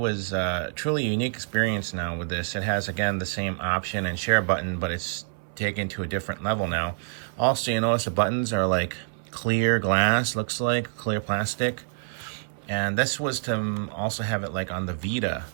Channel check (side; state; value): left; silent; 59 dB below the other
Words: truly a unique experience now with this. It has, again, the same option and share button, but it's taken to a different level now. Also, you notice the buttons are like clear glass, looks like clear plastic. And this was to also have it like on the Vita.